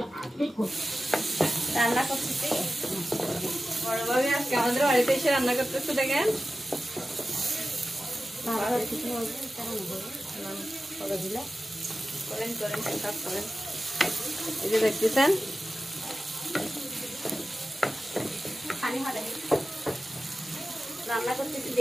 রান্না করতেছি বড় ভাবি আজকে আমাদের বাড়িতে এসে রান্না করতেছে দেখেন করেন সব করেন এই যে দেখতেছেন রান্না করতেছি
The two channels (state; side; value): normal; both; correlation 0.94